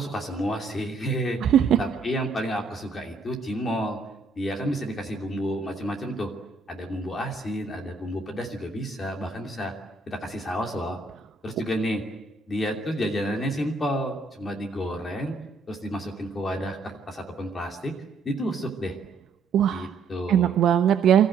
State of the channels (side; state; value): left; quieter; 4.4 dB